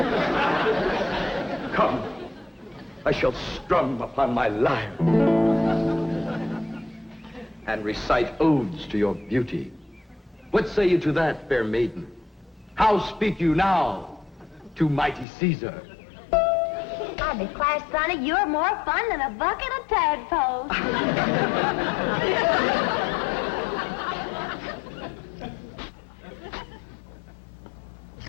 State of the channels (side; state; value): right; drops out; at 15.2 s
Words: Come, I shall strum upon my lyre and recite odes to your beauty. What say you to that, fair maiden? How speak you now to mighty Caesar? I declare, Sonny, you're more fun than a bucket of tadpoles.